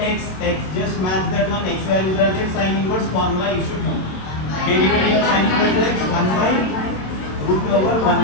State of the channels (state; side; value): late; right; 27 ms